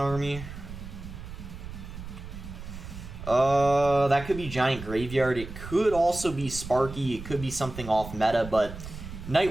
That could be Giant Graveyard. It could also be Sparky. It could be something off meta, but Night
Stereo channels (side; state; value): right; noise; rumble, 11 dB below the sound